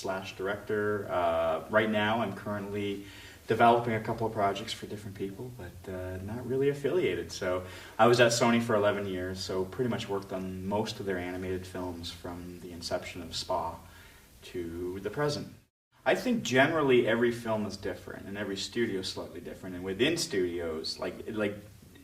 director. Right now, I'm currently developing a couple of projects for different people, but not really affiliated. So I was at Sony for 11 years, so pretty much worked on most of their animated films from the inception of Spa to the present. I think generally every film is different, and every studio is slightly different. And within studios,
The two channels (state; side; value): identical; both; correlation 1.00